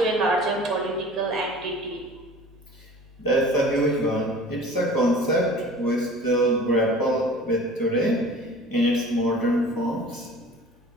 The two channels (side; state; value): both; normal; correlation 0.43